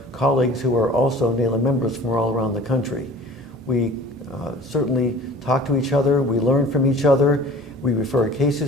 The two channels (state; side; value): normal; both; correlation 0.44